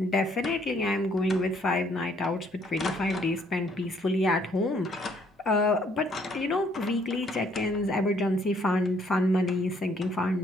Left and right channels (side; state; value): both; normal; correlation 0.66